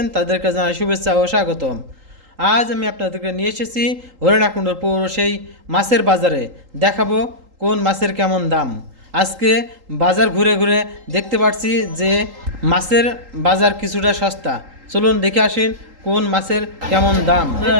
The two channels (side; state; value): left; late; 3.8 ms